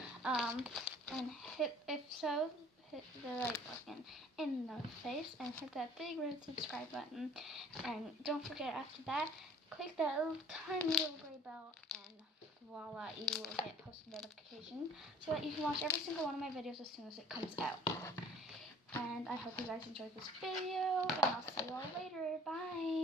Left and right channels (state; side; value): normal; both; correlation 0.51